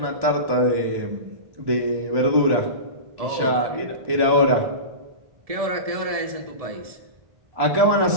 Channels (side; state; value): left; late; 1.7 ms